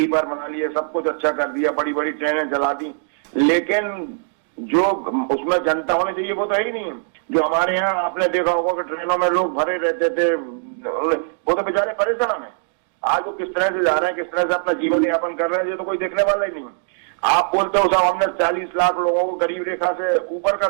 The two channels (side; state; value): left; silent; digital silence